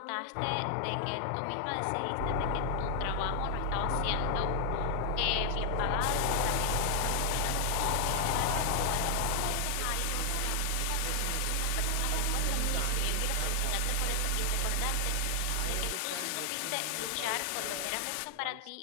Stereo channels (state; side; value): different; both; correlation 0.00